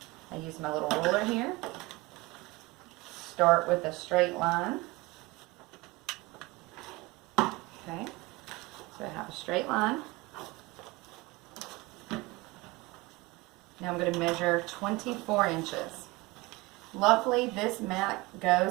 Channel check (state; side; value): quieter; left; 22.3 dB